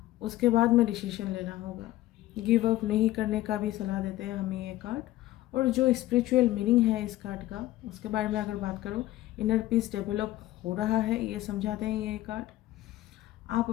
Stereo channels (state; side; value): quieter; right; 15.8 dB